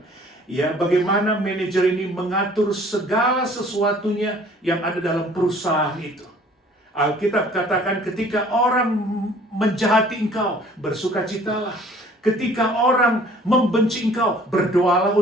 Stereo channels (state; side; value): normal; both; correlation 0.53